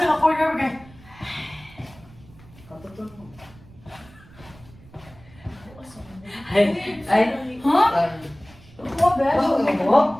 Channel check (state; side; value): noise; right; rumble, 23 dB below the sound